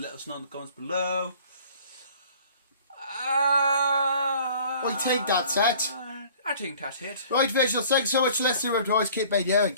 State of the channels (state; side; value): inverted; both; correlation -0.51